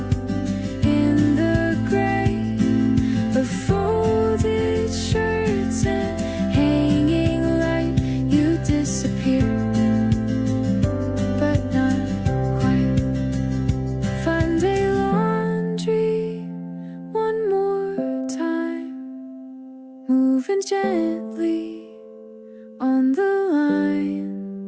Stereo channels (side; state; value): both; identical; correlation 1.00